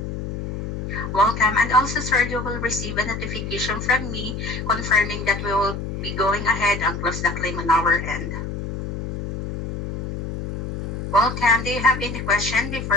Welcome, and also sir, you will receive a notification from me confirming that we will be going ahead and close the claim on our end. Welcome. Do you have any question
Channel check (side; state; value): left; noise; hum, 6 dB below the sound